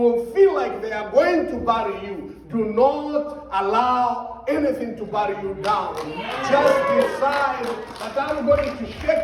feel like they are going to bury you. Do not allow anything to bury you down. Just decide that I'm going to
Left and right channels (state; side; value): identical; both; correlation 1.00